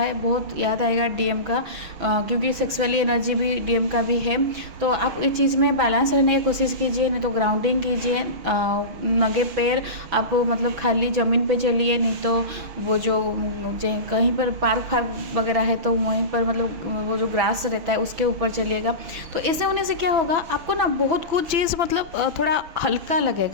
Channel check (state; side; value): late; left; 6.1 ms